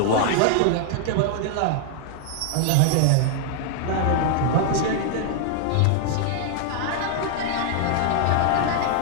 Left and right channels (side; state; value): both; different; correlation 0.00